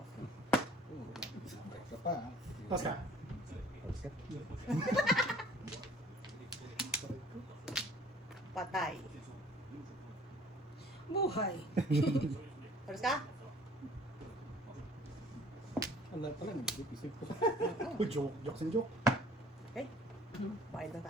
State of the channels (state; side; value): normal; both; correlation 0.54